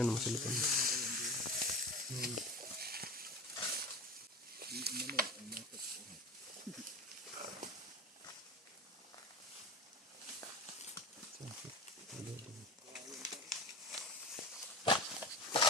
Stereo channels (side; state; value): both; normal; correlation 0.29